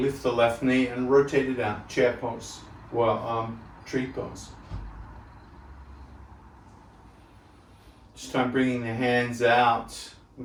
the left knee and rotate it out. Chair pose, well, tree pose. This time bringing the hands out.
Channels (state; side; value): identical; both; correlation 1.00